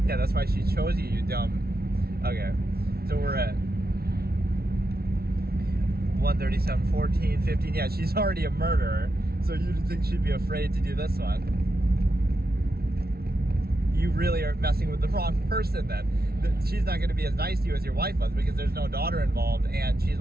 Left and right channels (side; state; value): left; late; 0.45 ms